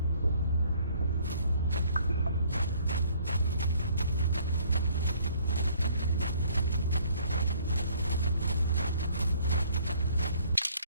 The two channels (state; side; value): inverted; both; correlation -0.60